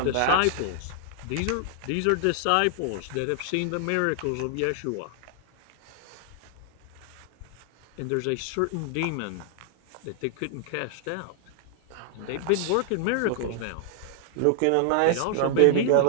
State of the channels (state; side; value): different; both; correlation 0.00